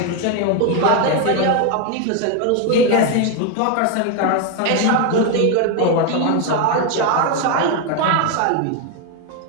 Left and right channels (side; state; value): both; different; correlation 0.01